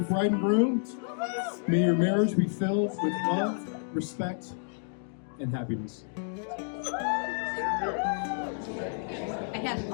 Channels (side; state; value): right; silent; digital silence